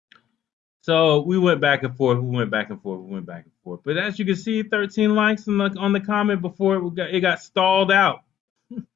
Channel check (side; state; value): right; quieter; 10.2 dB